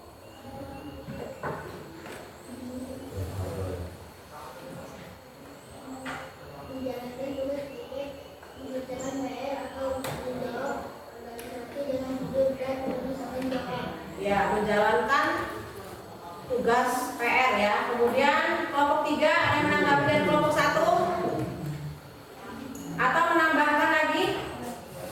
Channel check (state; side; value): identical; both; correlation 1.00